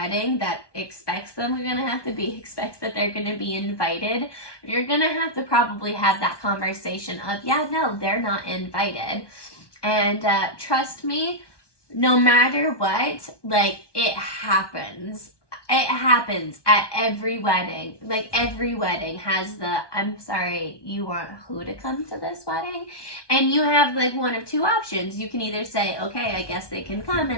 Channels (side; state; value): right; late; 1.2 ms